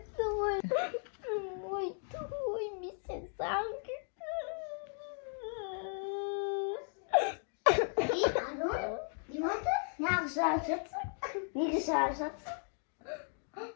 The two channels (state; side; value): silent; right; 54 dB below the other